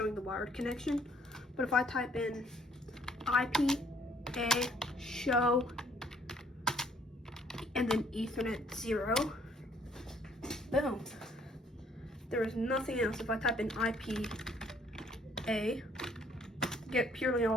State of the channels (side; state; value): both; normal; correlation 0.63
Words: the wired connection. But if I type in IP, show, and then Ethernet 0, boom. There is nothing else. If I type in IP, get purely